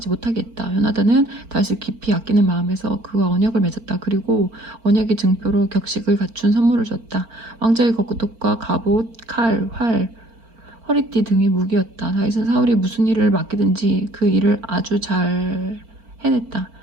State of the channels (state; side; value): late; left; 4.4 ms